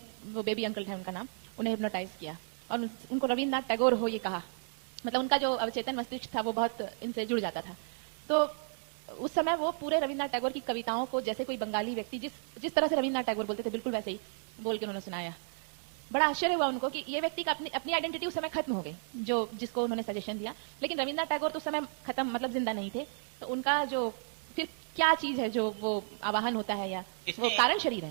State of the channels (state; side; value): silent; left; digital silence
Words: वो बेबी अंकल था उनका नाम, उन्हें हिप्नोटाइज किया और उनको रविन्द्रनाथ टैगोर हो ये कहा। मतलब उनका जो अवचेतन मस्तिष्क था वो बहुत इनसे जुड़ जाता था। तो उस समय वो पूरे रविन्द्रनाथ टैगोर की कविताओं को जैसे कोई बंगाली व्यक्ति जिस तरह से रविन्द्रनाथ टैगोर बोलते थे बिल्कुल वैसे ही बोल के उन्होंने सुनाया। बड़ा आश्चर्य हुआ उनको कि ये व्यक्ति का अपनी आइडेंटिटी उस समय खत्म हो गई, जो जिसको उन्होंने सजेशन दिया, लेकिन रविन्द्रनाथ टैगोर तो उस समय खत्म, मतलब जिंदा नहीं थे। तो उनका जो फिर क्या चीज है जो वो आवाहन होता है या वो कारण शरीर